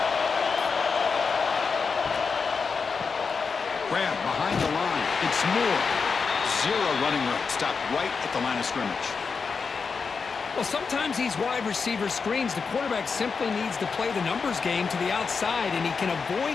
Grab behind the line. It's Moore. Zero running room. Stopped right at the line of scrimmage. Well, sometimes these wide receiver screens, the quarterback simply needs to play the numbers game to the outside, and he can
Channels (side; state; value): right; quieter; 5.2 dB